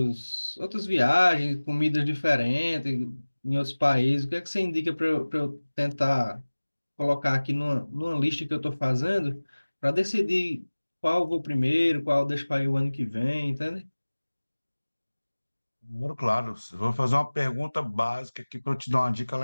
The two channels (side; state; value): both; inverted; correlation -1.00